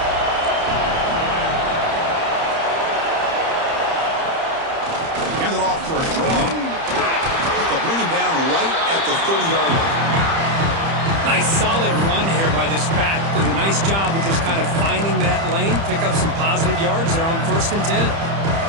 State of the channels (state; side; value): late; left; 30 ms